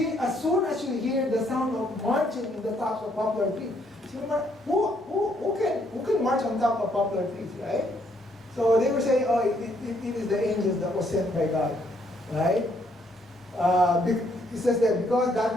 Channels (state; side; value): normal; both; correlation 0.70